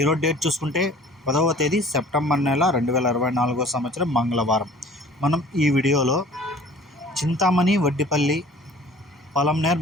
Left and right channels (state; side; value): normal; both; correlation 0.48